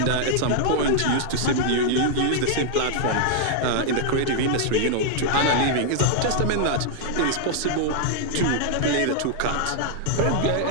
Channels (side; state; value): both; different; correlation 0.00